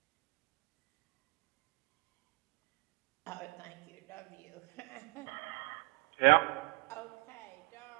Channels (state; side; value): quieter; left; 29.0 dB